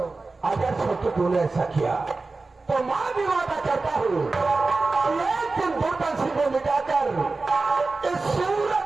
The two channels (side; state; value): left; quieter; 3.7 dB